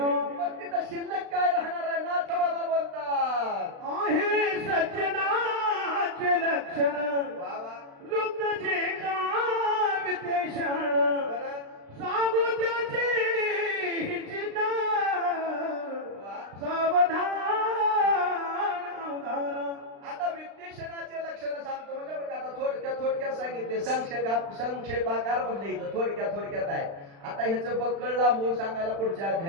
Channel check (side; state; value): left; late; 36 ms